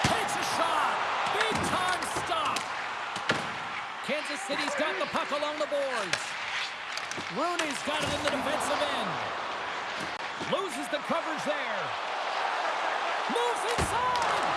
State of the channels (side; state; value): both; identical; correlation 1.00